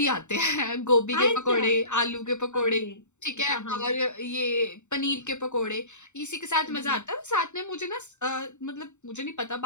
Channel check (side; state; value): right; late; 0.84 ms